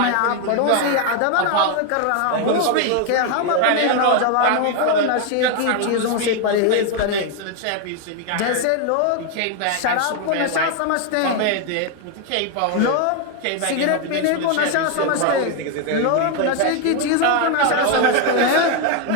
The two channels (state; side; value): different; both; correlation 0.01